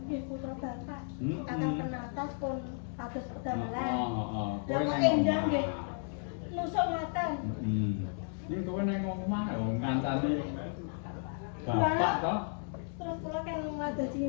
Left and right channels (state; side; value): silent; right; 55 dB below the other